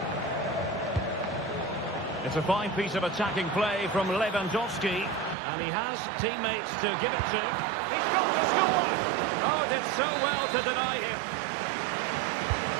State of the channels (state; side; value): drops out; left; at 5.4 s